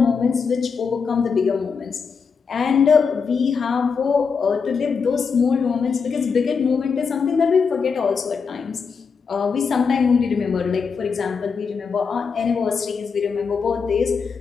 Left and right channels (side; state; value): right; quieter; 5.6 dB